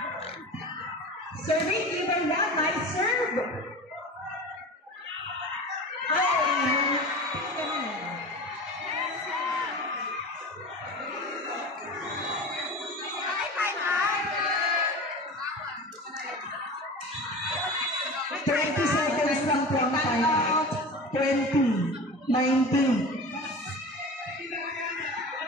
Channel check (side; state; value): both; normal; correlation 0.33